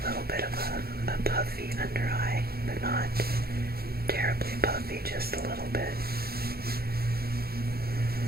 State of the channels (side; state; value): left; late; 0.45 ms